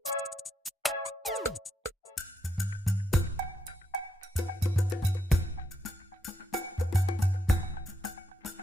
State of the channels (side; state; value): both; normal; correlation 0.80